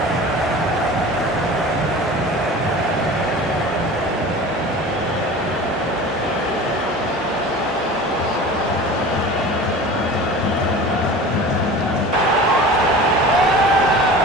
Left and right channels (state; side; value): normal; both; correlation 0.37